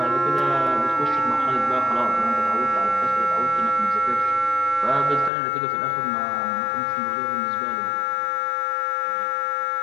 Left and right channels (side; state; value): right; drops out; at 5.3 s